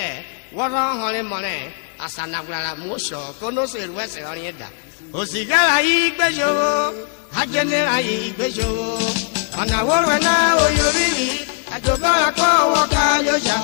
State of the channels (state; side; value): quieter; right; 38.7 dB